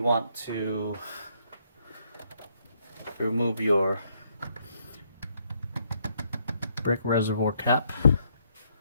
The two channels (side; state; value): both; inverted; correlation -0.72